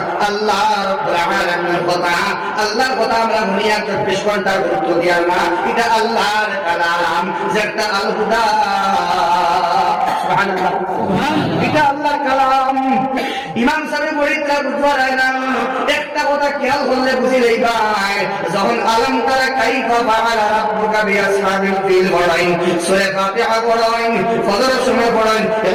আল্লাহ রাব্বুল আলামিনের কথা আল্লাহর কথা আমরা দুনিয়া 24 ঘন্টা গুরুত্ব দিই না এটা আল্লাহর কালাম যেটা আল হুদা সুবহানাল্লাহ এটা আল্লাহর কালাম ইমাম সাহেব বলিতা বুঝবার হয় না একটা কথা খেয়াল করলে বুঝি লই ভাই যখন আলম তারা কাইফা ফাআলা রাব্বুকা বিআসহাবিল ফিল পড়াইন সূরা ফাতিহা পড়াইন ফজরের সময় পড়াইন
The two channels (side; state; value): both; identical; correlation 1.00